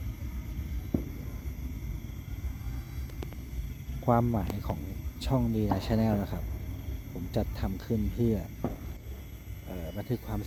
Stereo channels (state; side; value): identical; both; correlation 1.00